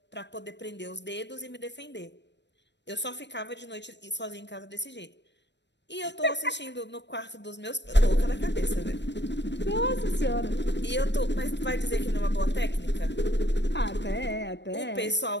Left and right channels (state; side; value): late; right; 0.51 ms